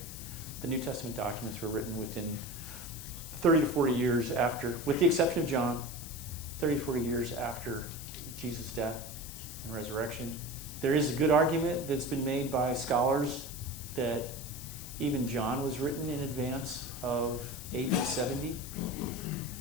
The New Testament documents were written within 30 to 40 years after, with the exception of John, 30 to 40 years after Jesus' death and resurrection. There is a good argument that's been made by scholars that even John was written in advance of AD 70.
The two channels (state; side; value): noise; left; hiss, 11 dB below the sound